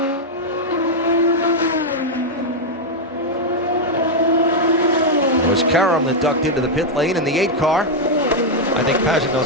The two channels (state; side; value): normal; both; correlation -0.01